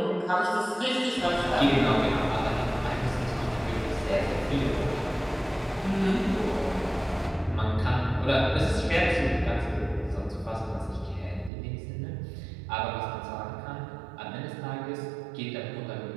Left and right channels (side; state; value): left; drops out; at 11.5 s